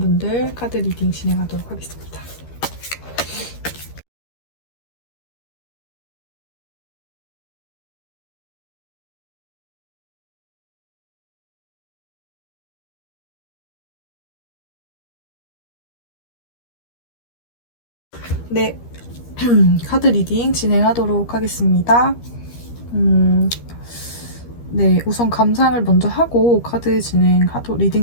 카드 리딩 진행하도록 하겠습니다. 네, 카드 리딩 진행하도록 하겠습니다. 네, 우선 감상을 먼저 하고 리딩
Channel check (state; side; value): late; right; 13 ms